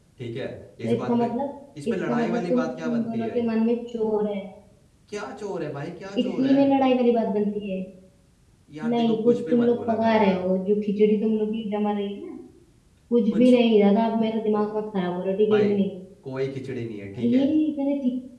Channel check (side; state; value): both; identical; correlation 1.00